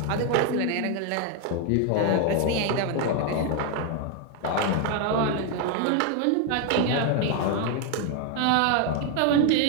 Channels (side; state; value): both; different; correlation 0.01